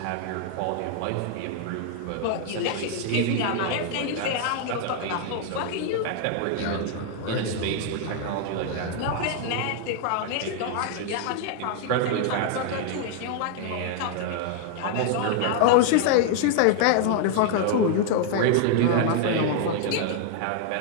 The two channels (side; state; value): both; different; correlation 0.00